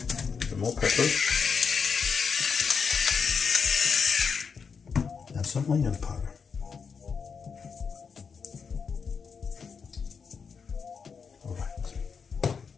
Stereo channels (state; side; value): quieter; right; 5.9 dB